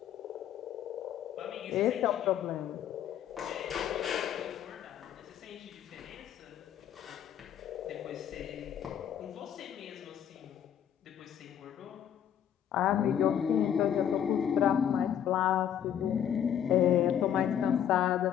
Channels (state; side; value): quieter; right; 9.6 dB